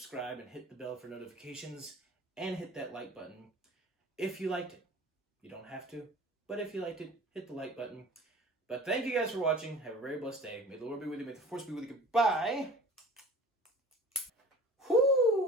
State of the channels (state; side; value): normal; both; correlation 0.43